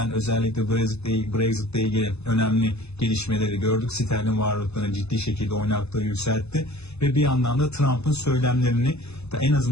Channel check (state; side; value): late; right; 0.80 ms